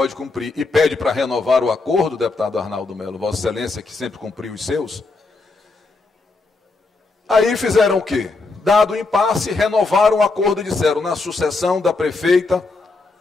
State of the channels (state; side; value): quieter; right; 3.6 dB